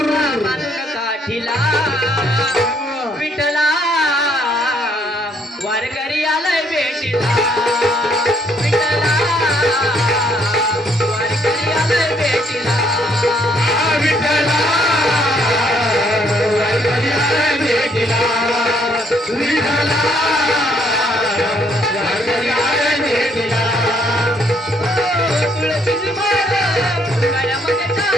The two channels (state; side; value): normal; both; correlation 0.68